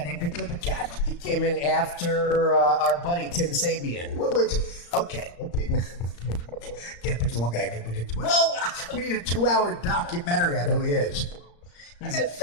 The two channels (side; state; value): right; late; 35 ms